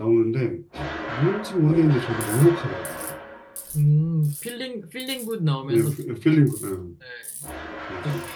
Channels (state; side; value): identical; both; correlation 1.00